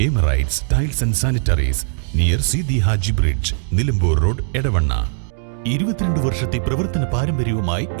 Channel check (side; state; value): left; silent; digital silence